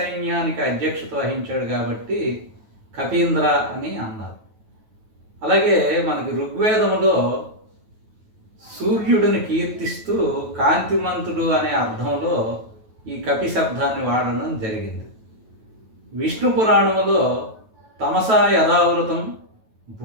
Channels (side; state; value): left; late; 9.2 ms